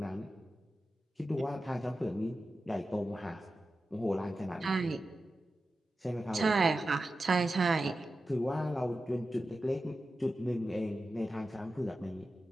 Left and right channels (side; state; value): both; normal; correlation 0.92